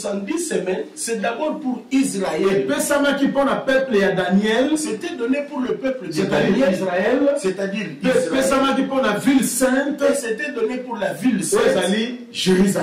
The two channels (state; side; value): identical; both; correlation 1.00